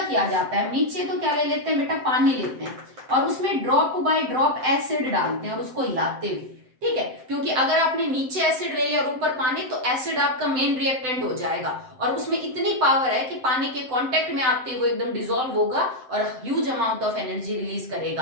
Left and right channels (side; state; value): left; late; 7.8 ms